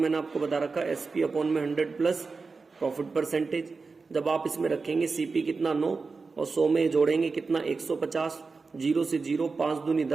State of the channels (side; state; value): left; quieter; 4.4 dB